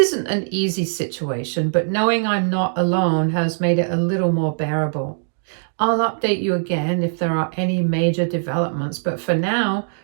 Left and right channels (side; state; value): left; silent; digital silence